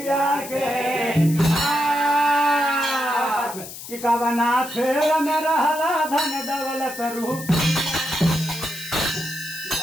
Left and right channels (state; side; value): noise; left; hiss, 12 dB below the sound